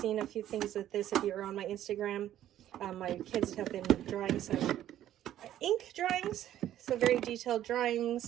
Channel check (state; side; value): quieter; left; 12.1 dB